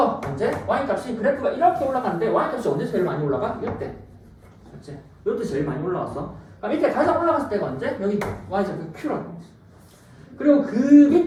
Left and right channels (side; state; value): both; identical; correlation 1.00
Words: 언제? y값이 그래프가 이렇게 올라가는데 y값이 언제 제일 많이 올라가? 이때. 그렇지? 이때 제일 많이 올라왔어. 그럼 이때 가장 올라갔을 때가 언제? 여기 y좌표 q라는 거지. 그리고 그